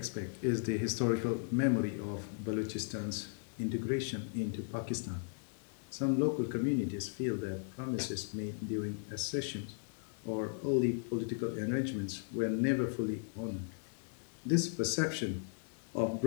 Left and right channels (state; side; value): silent; right; digital silence